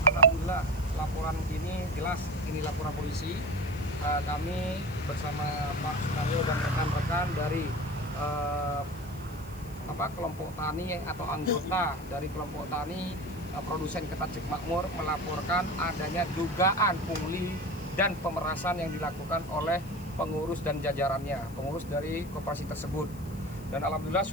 alhamdulillah laporan ini jelas, ini laporan polisi. Kami bersama Pak Sunaryo dan rekan-rekan dari kelompok tani atau anggota dari kelompok tani produsen ketan cek makmur melaporkan adanya dugaan pungli dan pemerasan yang dilakukan oleh pengurus dan jajarannya, pengurus dari koperasi tersebut. Dan alhamdulillah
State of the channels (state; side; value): noise; left; hiss, 21 dB below the sound